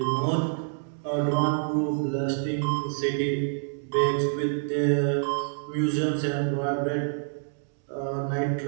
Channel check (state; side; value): silent; left; digital silence